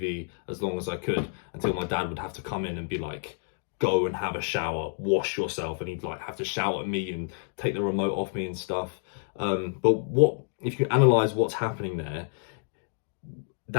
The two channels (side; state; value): right; silent; 59 dB below the other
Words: as long as I could until my dad would have to come in and be like, go and have a shower, wash yourself, and he'd like have to shout at me and take the remote off me and stuff. But what if you analyze what's happening there?